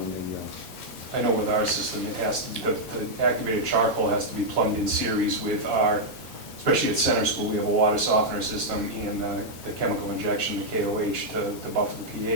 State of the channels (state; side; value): normal; both; correlation -0.04